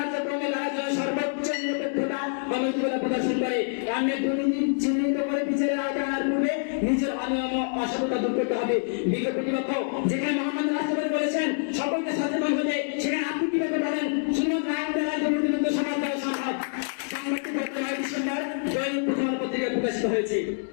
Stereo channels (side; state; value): right; silent; digital silence